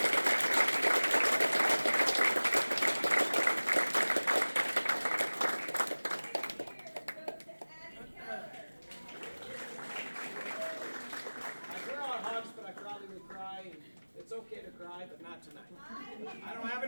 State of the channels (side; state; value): both; inverted; correlation -1.00